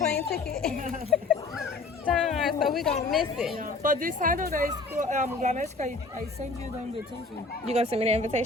ticket? Darn, so we gonna miss it. But this Saturday, Ganeska, I sent you the invitation. You gonna send me the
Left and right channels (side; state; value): right; quieter; 3.6 dB